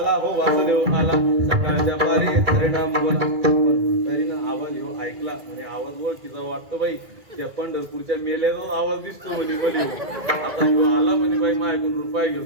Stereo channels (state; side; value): late; left; 2.0 ms